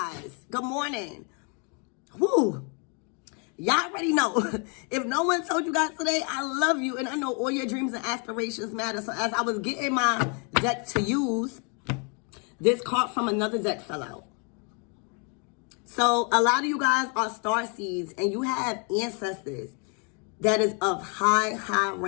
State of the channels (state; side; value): quieter; right; 37.1 dB